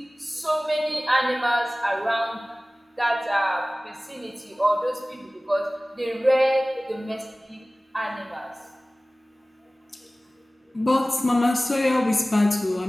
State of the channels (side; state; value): both; normal; correlation 0.98